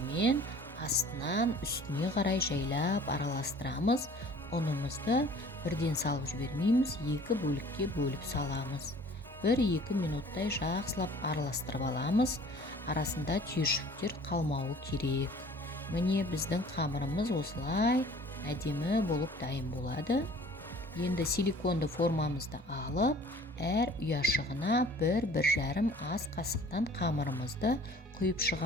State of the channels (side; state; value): both; normal; correlation 0.50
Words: астынан үстіне қарай жайлап араластырамыз. Ұнымызды бірден салып жібермейміз, 2 бөлікке бөліп саламыз. 1-2 минуттай жақсылап араластырып аламыз. Арасында түйіршіктер қалмауы керек. Міне біздің қамырымыз осылай әдемі болып дайын болады. Енді силиконды формамызды алып, әр ұяшығына 1-1,5 ас қасықтан қамырымызды құйып